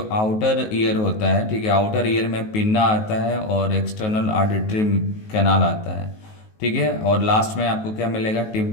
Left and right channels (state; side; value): late; right; 19 ms